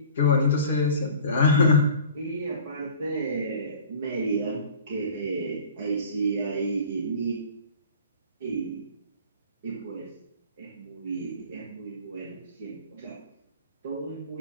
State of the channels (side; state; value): both; inverted; correlation -0.43